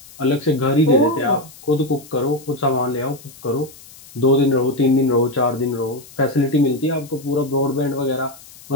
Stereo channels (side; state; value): left; noise; hiss, 21 dB below the sound